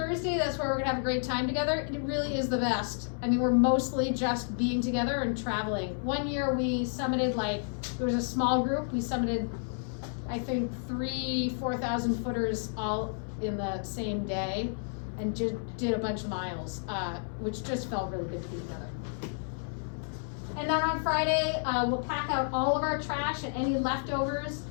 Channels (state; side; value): silent; right; digital silence